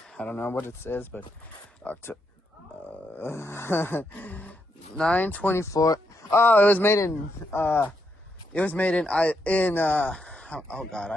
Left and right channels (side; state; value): both; normal; correlation 0.80